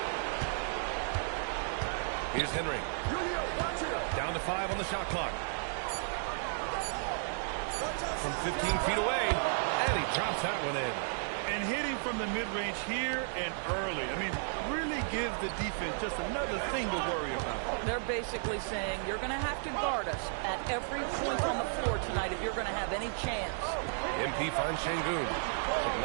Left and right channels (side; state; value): left; silent; digital silence